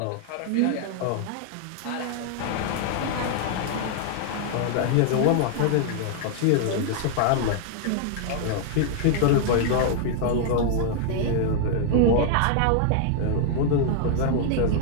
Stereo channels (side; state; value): both; different; correlation 0.00